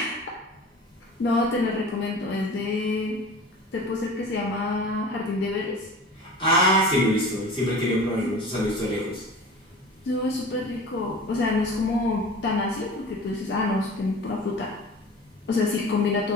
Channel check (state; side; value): normal; both; correlation 0.39